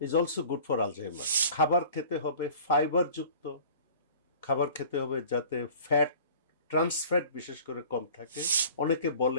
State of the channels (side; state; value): both; inverted; correlation -0.46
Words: also good for Alzheimer. খাবার খেতে হবে ফাইবারযুক্ত, খাবার খেতে হবে যাতে ফ্যাট, ট্রান্সফ্যাট বিশেষ করে কম থাকে। অনেকে